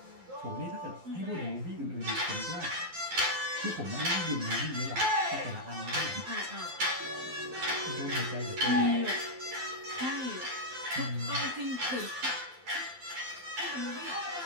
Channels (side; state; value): left; late; 12 ms